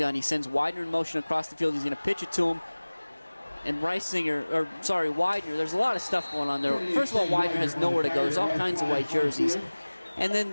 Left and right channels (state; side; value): inverted; both; correlation -1.00